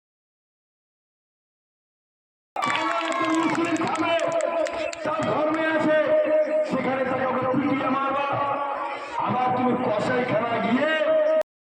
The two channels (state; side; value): identical; both; correlation 1.00